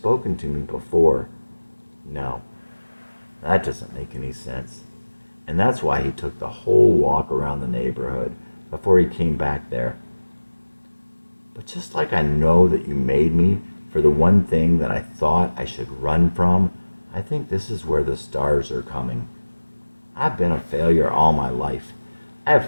to me before. No, that doesn't make any sense. And that's why he took the whole walk around the neighborhood before he came back there. But just like I know that you made me for the one thing that I thought I should run from, I think this is where the stars are coming. I've been a failure all my life. I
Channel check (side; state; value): both; inverted; correlation -1.00